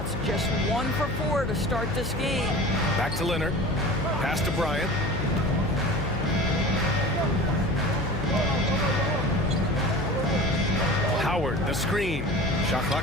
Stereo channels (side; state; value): left; noise; hum, 5 dB below the sound